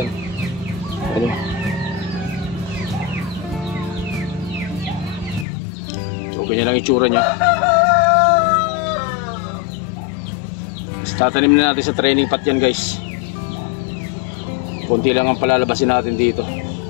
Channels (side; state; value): right; drops out; at 5.5 s